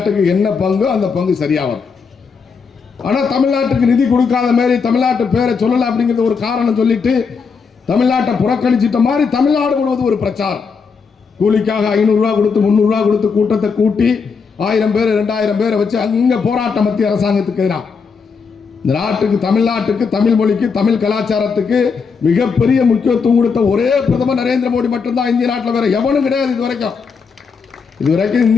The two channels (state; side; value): quieter; right; 5.5 dB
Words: என்ன பங்கு அந்த பங்கு சரியாகும். ஆனா தமிழ்நாட்டுக்கு நிதி கொடுக்காத மாதிரி தமிழ்நாட்டு பேரை சொல்லல அப்படிங்கிறது ஒரு காரணம் சொல்லிட்டு தமிழ்நாட்டை புறக்கணிச்சிட்ட மாதிரி தமிழ்நாடு முழுவதும் ஒரு பிரச்சாரம். கூலிக்காக 500 ரூபாய் கொடுத்து 300 ரூபாய் கொடுத்து கூட்டத்தை கூட்டி 1000 பேர் 2000 பேரை வச்சு அங்க போராட்டம் மத்திய அரசாங்கத்துக்கு எதிராக. இந்த நாட்டுக்கு, தமிழ்நாட்டுக்கு, தமிழ் மொழிக்கு, தமிழ் கலாச்சாரத்துக்கு மிகப்பெரிய முக்கியத்துவம் கொடுத்த ஒரே பிரதமர் நரேந்திர மோடி மட்டும்தான். இந்திய நாட்டில் வேற எவனும் கிடையாது. இதுவரைக்கும்